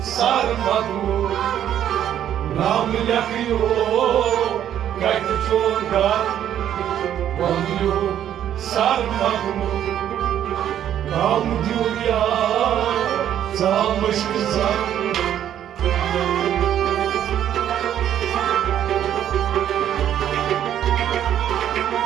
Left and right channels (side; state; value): left; quieter; 10.5 dB